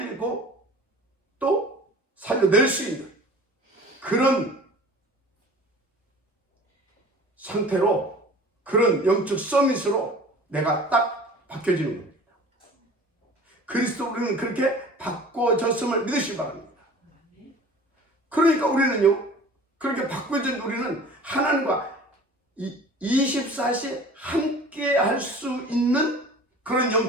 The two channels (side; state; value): both; normal; correlation 0.44